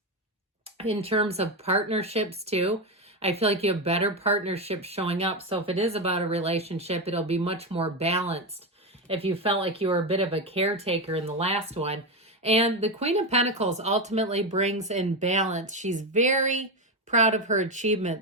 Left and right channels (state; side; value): normal; both; correlation 0.13